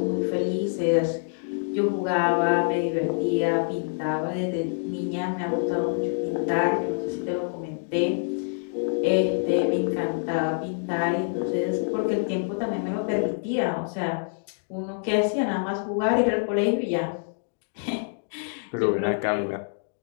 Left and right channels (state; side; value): silent; right; digital silence